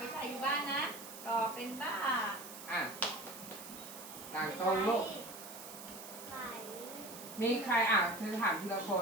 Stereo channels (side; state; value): right; noise; hiss, 13 dB below the sound